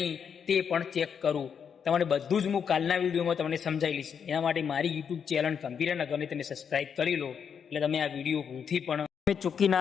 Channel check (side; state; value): right; quieter; 7.2 dB